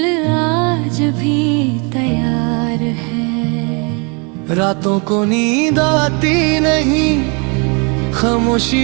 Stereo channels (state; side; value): quieter; left; 33.2 dB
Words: आज भी तैयार है। रातों को नींद आती नहीं,